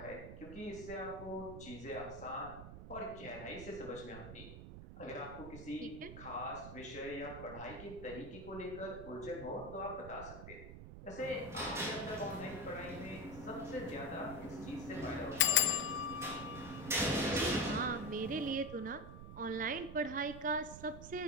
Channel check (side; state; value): right; noise; rumble, 11 dB below the sound